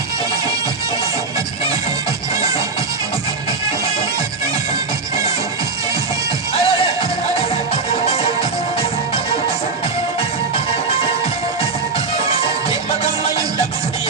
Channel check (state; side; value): quieter; left; 4.1 dB